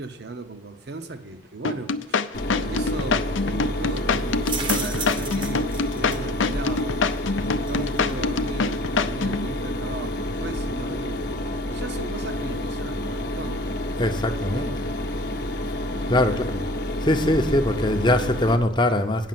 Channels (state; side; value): normal; both; correlation 0.45